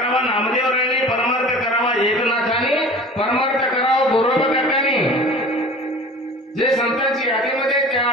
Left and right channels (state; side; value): normal; both; correlation 0.40